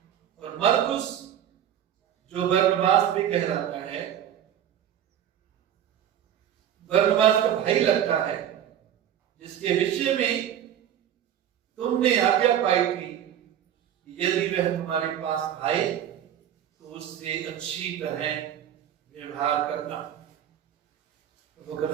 और मरकुस, जो बरनबास भी कहलाता है, बरनबास का भाई लगता है, जिसके विषय में तुमने आज्ञा पाई थी कि यदि वह तुम्हारे पास आए तो उससे अच्छी तरह व्यवहार करना। प्रभु का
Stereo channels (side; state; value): left; quieter; 10.3 dB